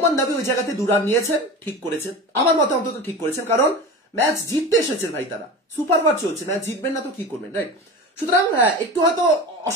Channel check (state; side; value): normal; both; correlation 0.31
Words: নবী ওই জায়গাতে 2 রান নিয়েছেন, ঠিক করেছেন, আমার মতে অন্তত ঠিক করেছেন, কারণ ম্যাচ জিততে এসেছেন ভাই, তারা সুপার ওভার চলছে, ম্যাচ জিতবেন না তো কি করবেন, রাইট। সুতরাং একটু হয়তো